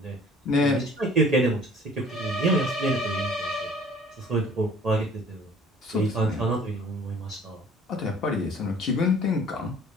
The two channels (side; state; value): both; normal; correlation 0.52